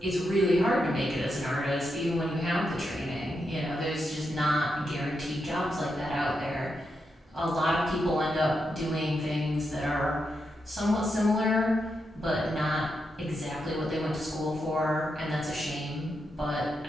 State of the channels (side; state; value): both; normal; correlation 0.84